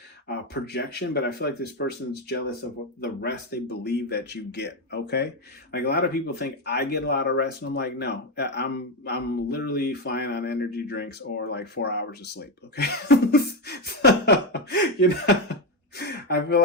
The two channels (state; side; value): normal; both; correlation 0.09